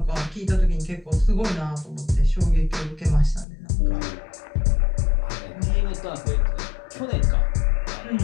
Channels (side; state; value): right; drops out; at 3.5 s